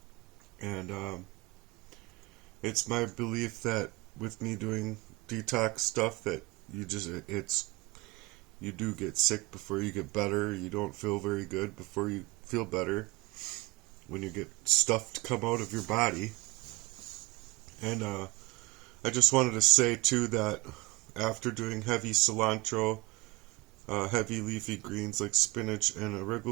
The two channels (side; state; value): left; quieter; 23.7 dB